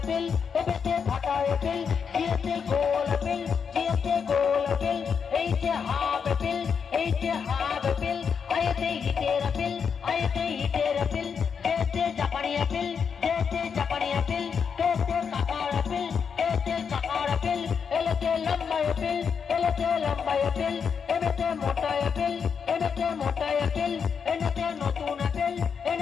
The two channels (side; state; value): right; quieter; 6.5 dB